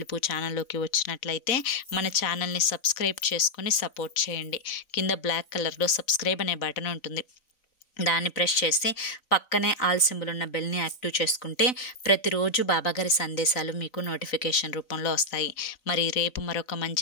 ఛానల్లోకి వచ్చినట్లయితే మన ఛానల్ని సబ్స్క్రైబ్ చేసుకొని సపోర్ట్ చేయండి. కింద బ్లాక్ కలర్లో సబ్స్క్రైబ్ అనే బటన్ ఉంటుంది, దాన్ని ప్రెస్ చేసి పక్కనే ఆల్ సింబల్ ఉన్న బెల్ని యాక్టివ్ చేసుకుంటే ప్రతిరోజు బాబాగారి సందేశాలు మీకు నోటిఫికేషన్ రూపంలో వస్తాయి. మరి రేపు మరొక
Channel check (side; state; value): right; late; 3.9 ms